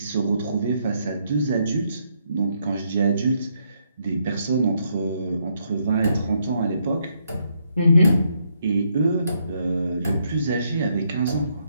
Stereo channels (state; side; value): inverted; both; correlation -0.75